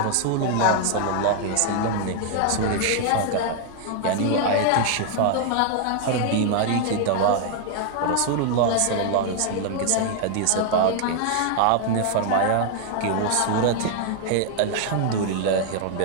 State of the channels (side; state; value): both; different; correlation 0.00